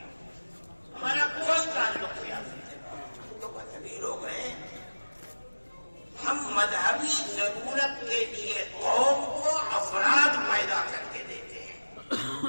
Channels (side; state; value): both; inverted; correlation -1.00